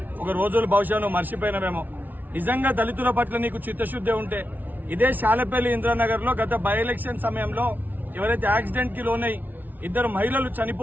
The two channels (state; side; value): late; left; 0.083 ms